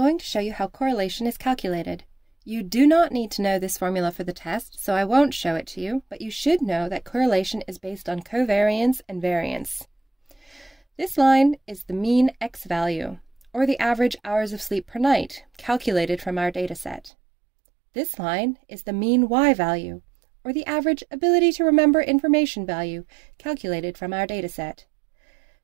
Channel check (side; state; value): left; drops out; at 17.1 s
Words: to show you how correlation is calculated. You do not need to know this formula for the test, so I won't show it to you, but you should know that correlation is based on covariance and variance. This line is the mean X value, or the average hours of sleep per night, calculated from our dataset. This line is the mean Y value, or the average ability to remember information value, calculated from our dataset.